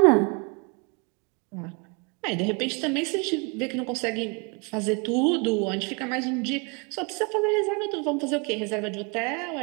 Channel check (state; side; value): quieter; left; 30.9 dB